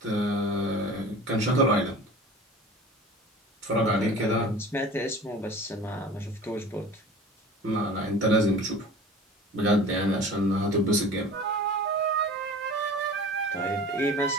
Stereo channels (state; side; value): normal; both; correlation 0.40